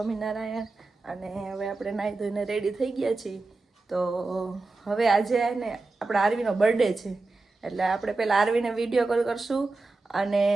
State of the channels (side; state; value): left; quieter; 3.5 dB